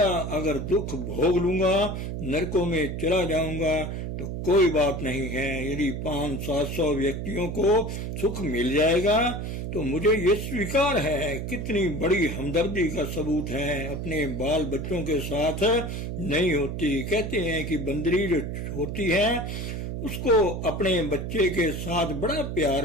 अगर दुख भोग लूंगा, नरकों में चला जाऊंगा तो कोई बात नहीं है। यदि 500-700 व्यक्तियों को सुख मिल जाएगा तो मुझे ये स्वीकार है। कितनी बड़ी हमदर्दी का सबूत है। अपने बाल बच्चों के साथ नहीं होती। कहते हैं कि बंदरी जो होती है उसको अपने बच्चे के साथ बड़ा प्यार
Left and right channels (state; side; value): noise; right; hum, 4 dB below the sound